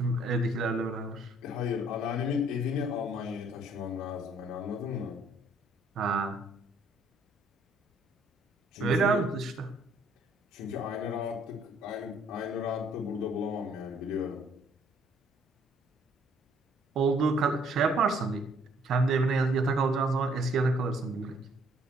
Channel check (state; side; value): normal; both; correlation 0.63